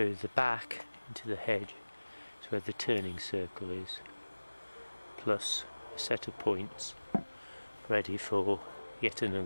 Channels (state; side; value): inverted; both; correlation -1.00